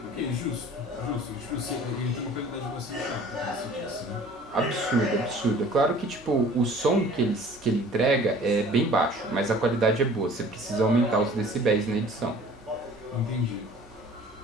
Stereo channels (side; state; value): both; normal; correlation 0.48